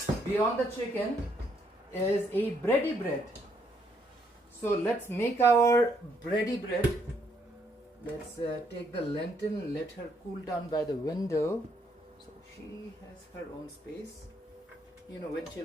beyond the chicken, is a bready bread. So let's make our bready bread. Let's take the lantern, let her cool down by the window. So she has her own space. You know, when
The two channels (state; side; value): normal; both; correlation 0.72